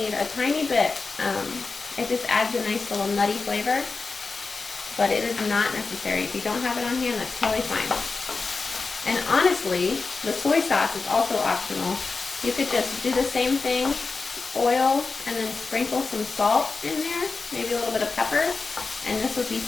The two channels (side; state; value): right; quieter; 4.2 dB